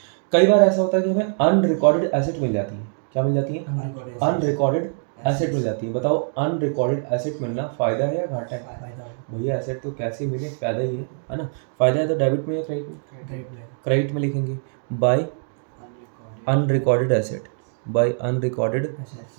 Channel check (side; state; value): left; silent; 63 dB below the other